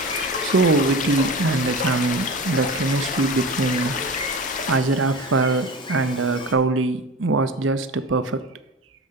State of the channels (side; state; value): both; normal; correlation 0.31